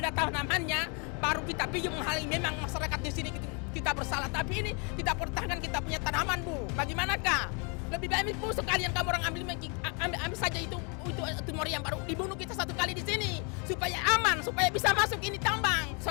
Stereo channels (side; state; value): right; quieter; 34.9 dB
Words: ada tanamannya, baru kita pergi menghalangi. Memang masyarakat di sini kita bersalah, tapi ini kita pertahankan kita punya tanaman Bu. Bagaimanakah? Lebih baik Bu sekalian kamu orang ambil saja itu tumor yang baru dibunuh kita 1 kali di sini supaya aman, supaya bisa masuk ini tambang.